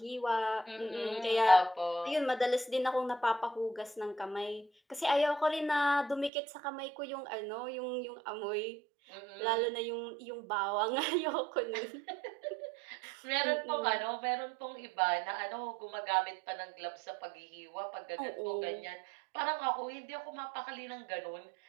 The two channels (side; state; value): left; drops out; at 6.3 s